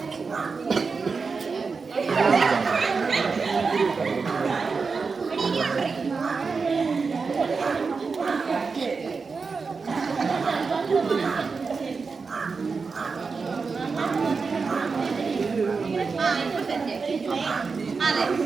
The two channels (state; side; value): quieter; left; 4.8 dB